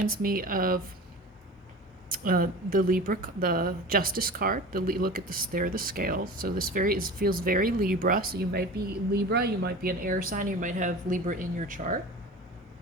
me of the Libra, the Justice card. Look at this, there are the scales. So this feels very Libra. So you might be Libra, you might be an air sign, you might have Libra in your chart.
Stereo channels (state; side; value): normal; both; correlation 0.35